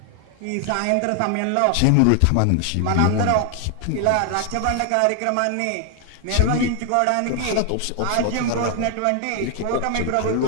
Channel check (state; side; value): different; both; correlation 0.00